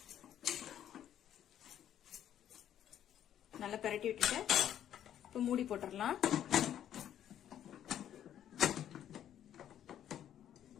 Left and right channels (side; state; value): right; quieter; 10.6 dB